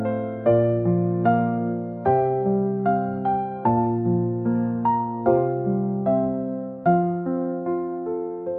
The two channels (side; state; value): both; identical; correlation 1.00